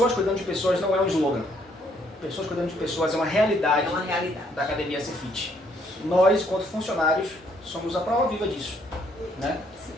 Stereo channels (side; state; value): both; normal; correlation 0.68